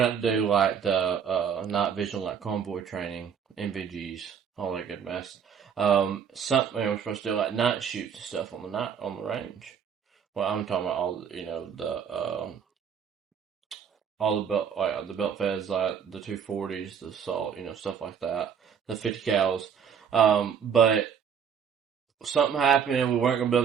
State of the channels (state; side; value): quieter; left; 7.6 dB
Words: out to do, like, the night vision, like convoy training, NVGs, all that good mess. We're supposed to do, like, night shoots and stuff on the range. Well, I'm talking about all the belt feds, like the 240s, the assault, stuff like that, the 50 cals. But something happened. We weren't going to be